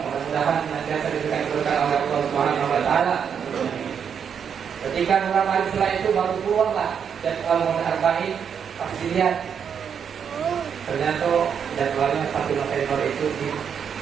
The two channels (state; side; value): quieter; left; 7.4 dB